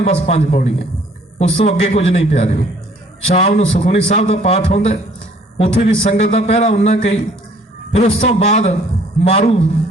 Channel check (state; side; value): normal; both; correlation 0.58